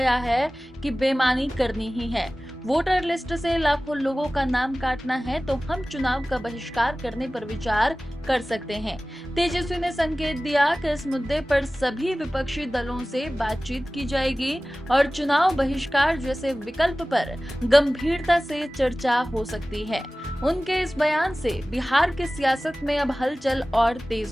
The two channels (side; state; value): both; normal; correlation 0.97